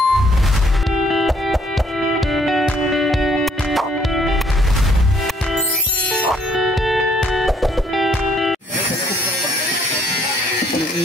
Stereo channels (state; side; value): normal; both; correlation 0.65